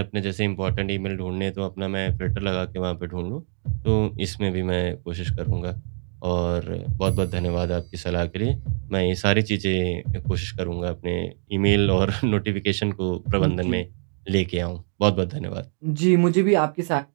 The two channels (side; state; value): left; silent; 62 dB below the other